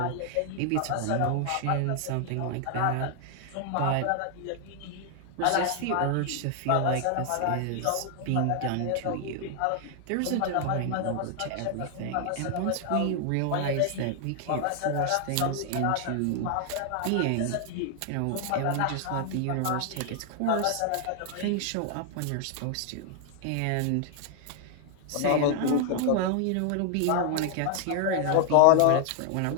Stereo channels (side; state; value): both; different; correlation 0.00